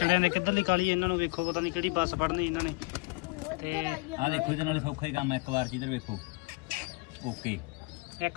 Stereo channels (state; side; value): quieter; right; 26.4 dB